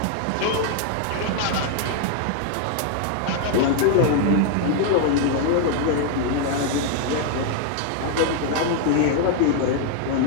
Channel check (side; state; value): both; different; correlation 0.00